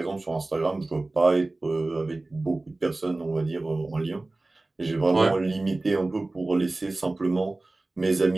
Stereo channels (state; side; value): quieter; left; 3.0 dB